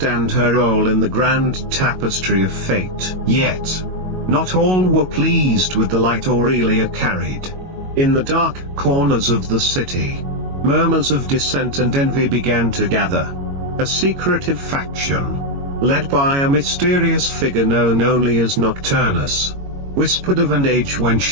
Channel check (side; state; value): left; late; 22 ms